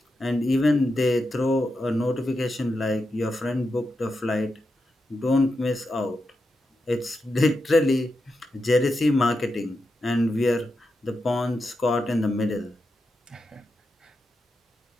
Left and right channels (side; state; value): both; normal; correlation 0.87